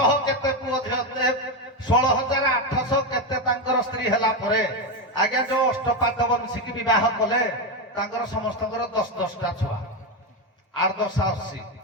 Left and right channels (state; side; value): normal; both; correlation 0.10